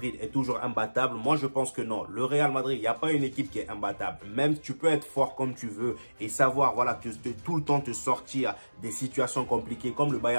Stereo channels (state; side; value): inverted; both; correlation -1.00